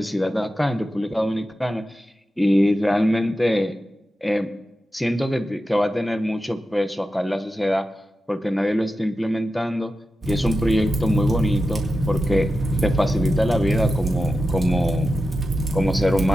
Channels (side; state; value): both; normal; correlation 0.91